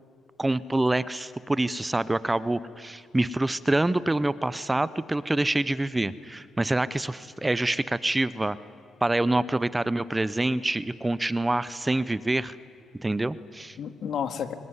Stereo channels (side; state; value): both; normal; correlation 0.98